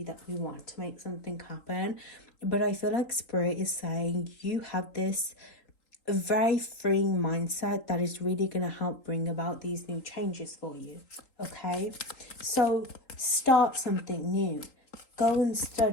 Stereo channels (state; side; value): late; right; 3.8 ms